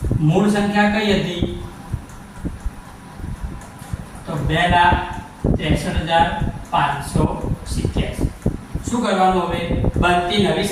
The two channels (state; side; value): identical; both; correlation 1.00